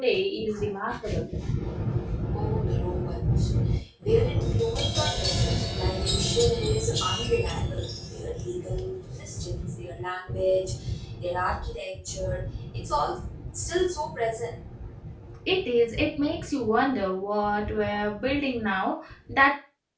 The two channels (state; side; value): identical; both; correlation 1.00